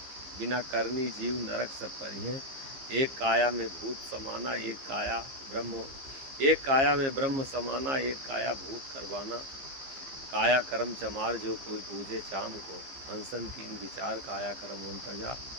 बिना करनी जीव नरक सब परी हैं। एक काया में भूत समाना, एक काया में ब्रह्म समाना, एक काया भूत करवाना। काया कर्म चमार जो कोई पूजे चाम को, हंसन तीन विचार काया कर्म उनतजा।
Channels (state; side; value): late; left; 15 ms